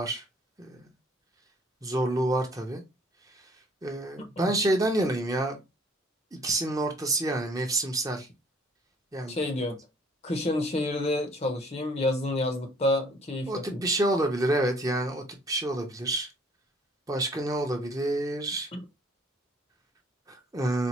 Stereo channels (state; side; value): normal; both; correlation 0.58